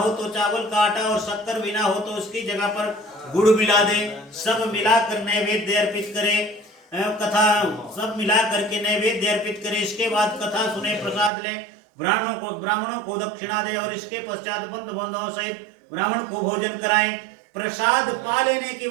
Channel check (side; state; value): left; drops out; at 11.3 s